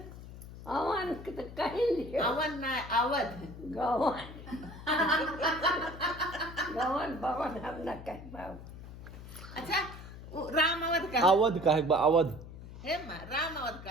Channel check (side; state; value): left; noise; hum, 14 dB below the sound